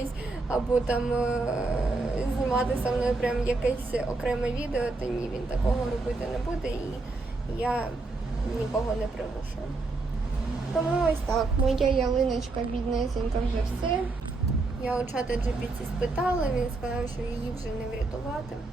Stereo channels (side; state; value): left; quieter; 3.4 dB